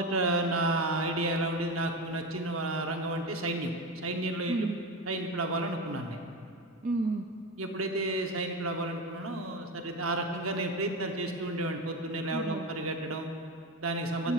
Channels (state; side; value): normal; both; correlation 0.21